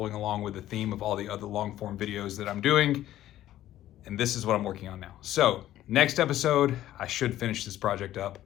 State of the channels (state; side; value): quieter; right; 13.4 dB